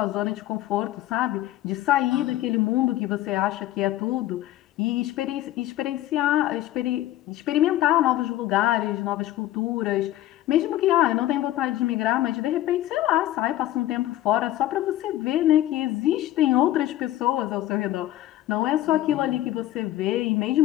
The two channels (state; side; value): quieter; right; 14.3 dB